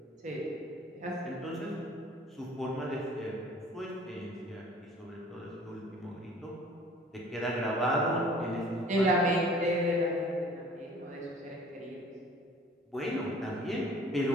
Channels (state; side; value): normal; both; correlation 0.50